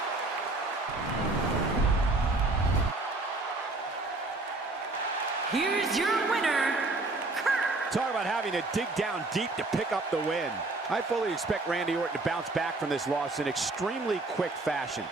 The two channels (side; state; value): left; quieter; 3.1 dB